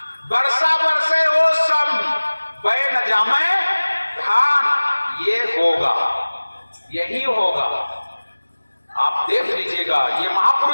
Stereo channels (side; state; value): both; inverted; correlation -1.00